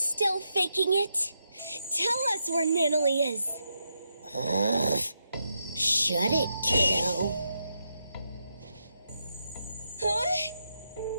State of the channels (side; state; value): both; inverted; correlation -0.83